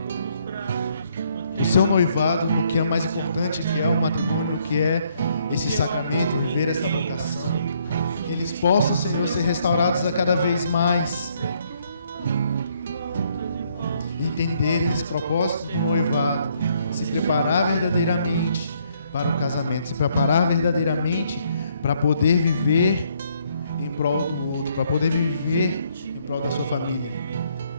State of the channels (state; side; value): inverted; both; correlation -0.69